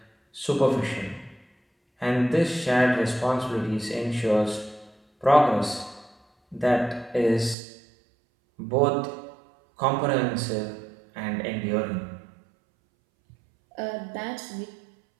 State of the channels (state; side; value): drops out; left; at 7.6 s